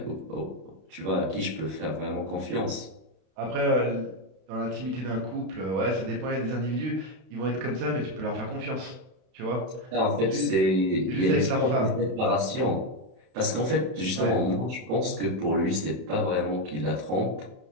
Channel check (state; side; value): late; left; 32 ms